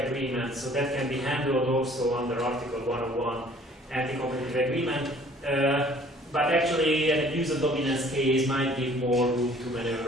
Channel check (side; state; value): both; normal; correlation 0.54